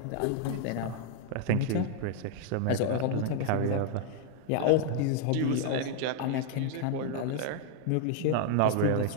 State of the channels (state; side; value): different; both; correlation 0.00